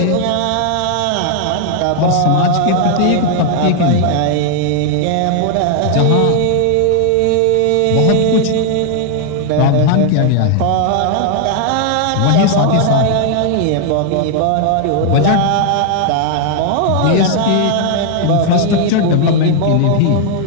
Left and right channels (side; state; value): both; different; correlation 0.00